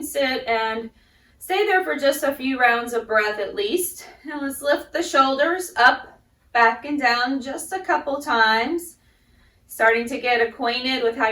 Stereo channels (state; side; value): identical; both; correlation 1.00